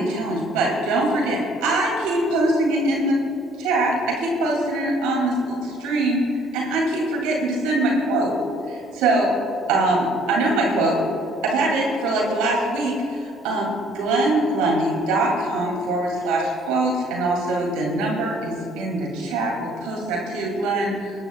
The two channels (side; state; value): both; normal; correlation 0.59